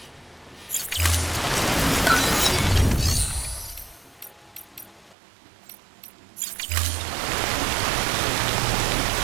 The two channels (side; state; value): left; drops out; at 5.2 s